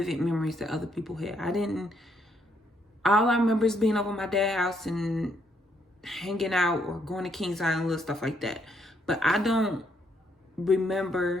memories that other people had. All I remember is being over at my dad's house and hanging out or going to Kings Island, little stuff like that. But I don't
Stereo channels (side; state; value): both; normal; correlation 0.73